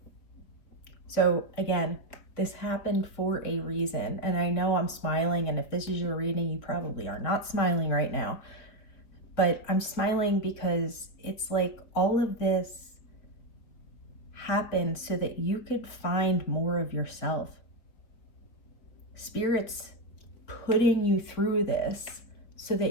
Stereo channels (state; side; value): late; right; 4.5 ms